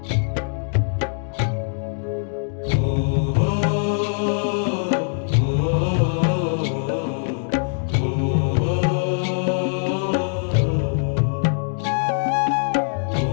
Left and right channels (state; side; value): silent; right; digital silence